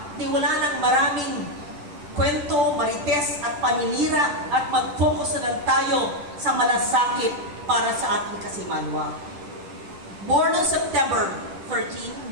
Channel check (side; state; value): left; late; 10 ms